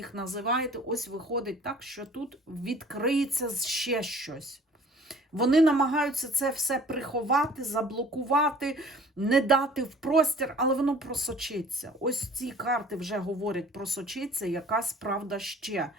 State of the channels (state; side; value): normal; both; correlation 0.50